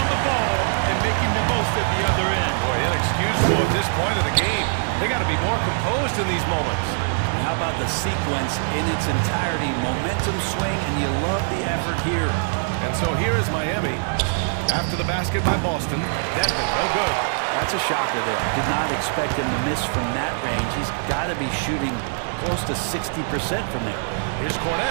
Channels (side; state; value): left; silent; 62 dB below the other